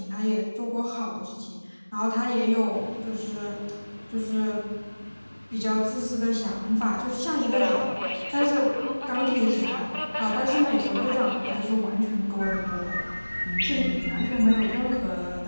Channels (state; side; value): inverted; both; correlation -1.00